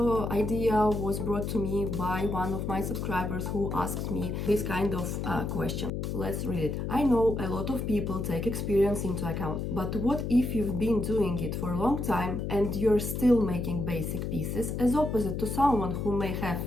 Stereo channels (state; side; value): noise; left; hum, 3 dB below the sound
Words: idea was brought to me by one of my subscribers who asked me this kind of question. Let's read it. I know a lot of people take experience into account, but what if you've been doing it for a long time and you're still making basic pieces, as opposite to someone who may have